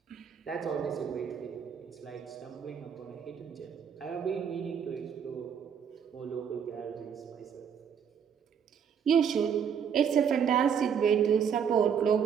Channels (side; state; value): left; quieter; 7.6 dB